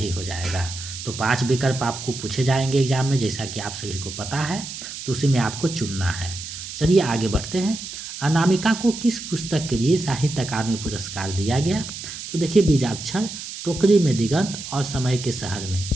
हो जाएगा। तो 5 विकल्प आपको पूछे जाएंगे एग्जाम में, जैसा कि आप सभी को पता है, तो उसी में आपको चुनना है। चलिए आगे बढ़ते हैं। अनामिका को किस पुस्तक के लिए साहित्य अकादमी पुरस्कार दिया गया? तो देखिए बीजाक्षर, टोकरी में दिगंत और समय के शहर में,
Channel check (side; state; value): right; noise; hiss, 9 dB below the sound